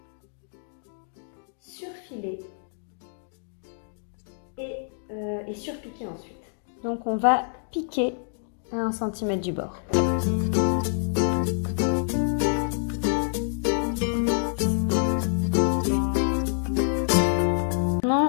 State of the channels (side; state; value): right; silent; digital silence